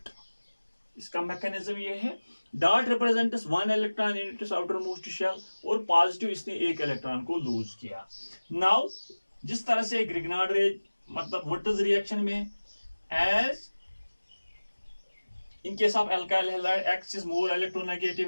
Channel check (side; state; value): both; inverted; correlation -1.00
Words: इसका मैकेनिज्म ये है. Dot represents 1 electron in its outermost shell और पॉजिटिव इसने 1 इलेक्ट्रॉन को लूज किया. नाउ जिस तरह से ग्रिग्नार्ड मतलब Wurtz's रिएक्शन में as in case of alkyl halide X is more